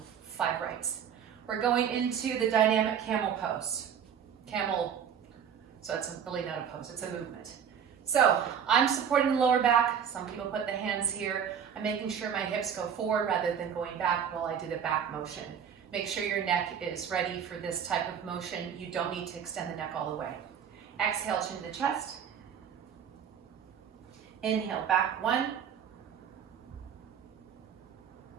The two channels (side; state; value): left; quieter; 8.1 dB